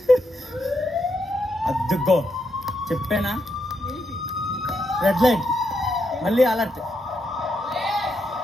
అద్దుకో చెప్పానా? రెడ్ లైట్ మళ్ళీ అలర్ట్.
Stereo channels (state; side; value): normal; both; correlation 0.81